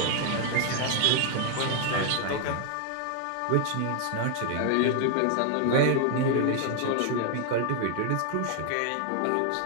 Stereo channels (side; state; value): both; different; correlation 0.00